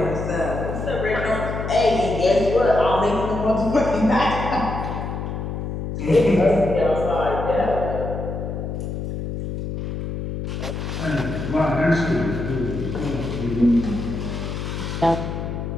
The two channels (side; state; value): left; noise; hum, 5 dB below the sound